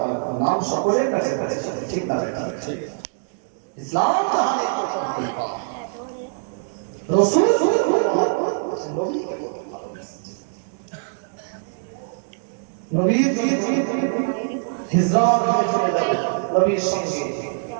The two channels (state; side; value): silent; left; digital silence